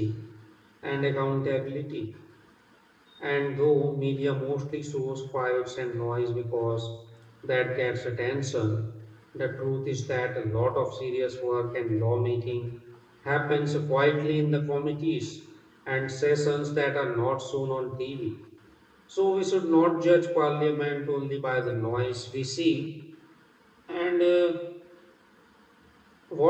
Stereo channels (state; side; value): identical; both; correlation 1.00